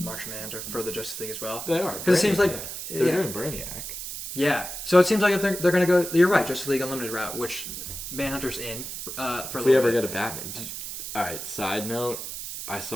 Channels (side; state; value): right; noise; hiss, 7 dB below the sound